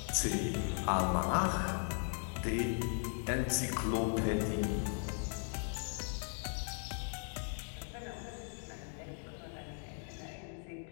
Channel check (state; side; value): silent; right; 53 dB below the other